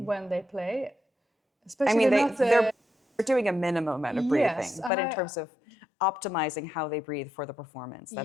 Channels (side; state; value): right; drops out; at 4.9 s